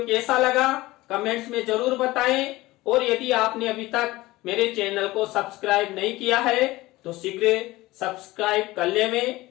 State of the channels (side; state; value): right; quieter; 18.9 dB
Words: कैसा लगा कमेंट्स में जरूर बताएं, और यदि आपने अभी तक मेरे चैनल को सब्सक्राइब नहीं किया है तो शीघ्र सब्सक्राइब कर लें।